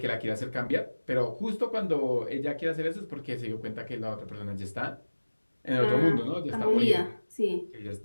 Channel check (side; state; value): both; inverted; correlation -1.00